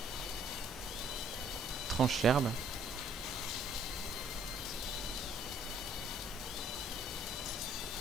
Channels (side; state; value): both; normal; correlation 0.61